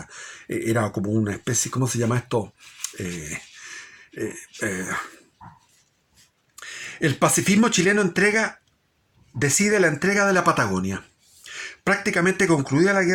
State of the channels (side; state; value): both; identical; correlation 1.00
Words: era como una especie, ¿cómo se llama esto? El pacifismo chileno decide la entrega de la Patagonia. Prácticamente concluida la